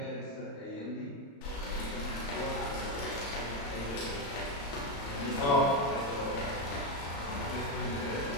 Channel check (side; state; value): right; late; 35 ms